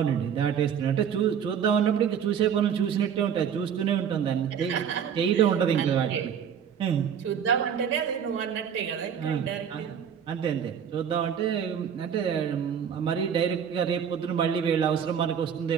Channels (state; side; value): quieter; left; 8.0 dB